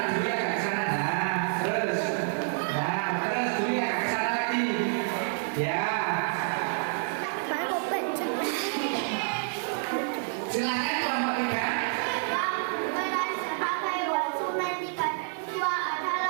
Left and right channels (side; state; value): left; silent; 59 dB below the other